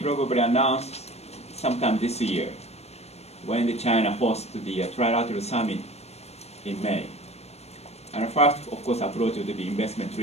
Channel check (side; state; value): right; late; 0.31 ms